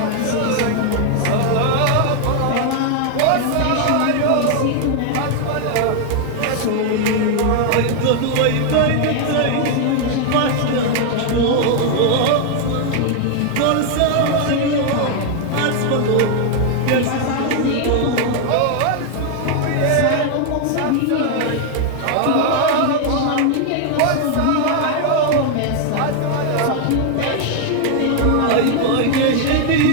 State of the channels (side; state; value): both; different; correlation 0.00